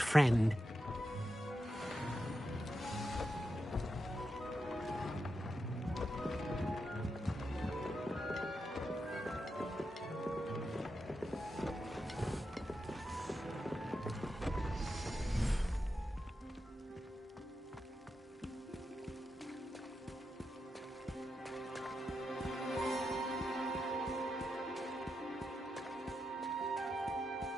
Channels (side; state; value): both; normal; correlation 0.87